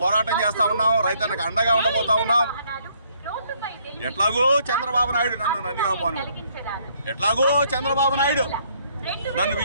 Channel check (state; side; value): inverted; both; correlation -0.67